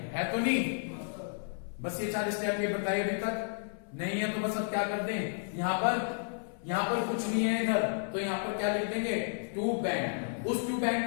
तो नहीं। बस ये 4 स्टेप ये बताइए अभी तक नहीं है तो बस अब क्या कर दें, यहां पर कुछ नहीं है इधर, तो यहां पर क्या लिख देंगे? To bank. उस टू बैंक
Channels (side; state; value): right; silent; 56 dB below the other